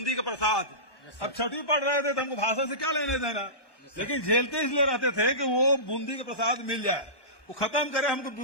का प्रसाद। अब छठी पढ़ रहे थे तो हमको भाषण से क्या लेने देना, लेकिन झेलते इसलिए रहते थे कि वो बूंदी का प्रसाद मिल जाए, वो खत्म करे, हमको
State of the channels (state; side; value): late; right; 1.1 ms